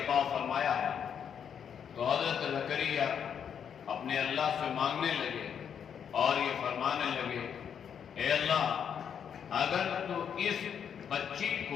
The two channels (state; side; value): quieter; right; 7.9 dB